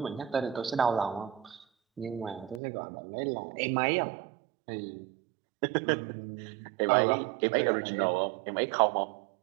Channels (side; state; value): left; drops out; at 2.6 s